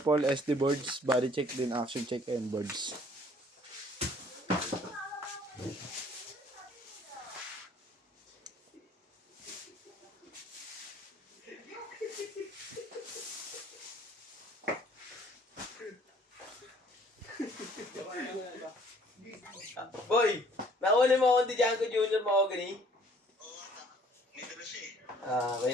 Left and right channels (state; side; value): normal; both; correlation 0.57